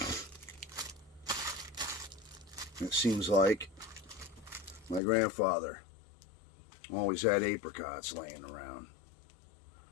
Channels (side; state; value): right; drops out; at 5.0 s